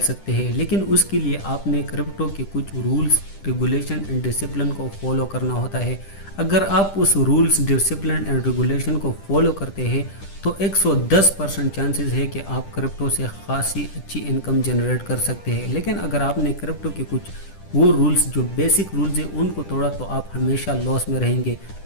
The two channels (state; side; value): late; right; 10 ms